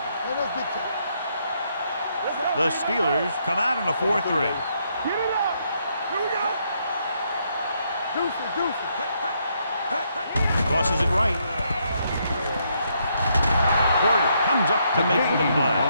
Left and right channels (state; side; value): inverted; both; correlation -0.75